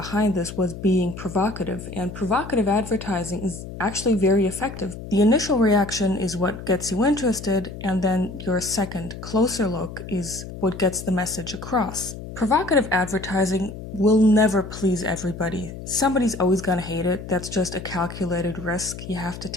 this was being provocative, and provocative advertising is actually very effective. The initial reaction is what gets you interested, and then your second, closer look is what gets the message across. Provocative advertising will never please everybody. Somebody's always gonna hate it. That's just a calculated risk you have to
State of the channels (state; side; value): noise; left; hum, 11 dB below the sound